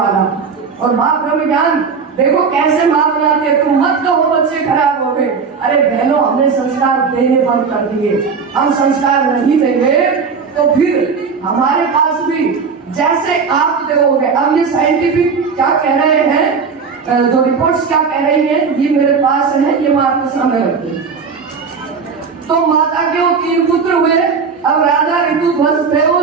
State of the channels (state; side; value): quieter; left; 5.5 dB